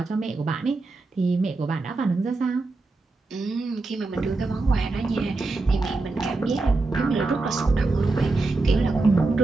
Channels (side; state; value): left; quieter; 3.5 dB